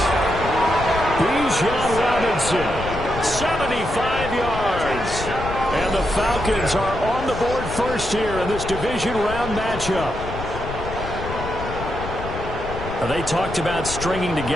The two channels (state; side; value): noise; left; rumble, 8 dB below the sound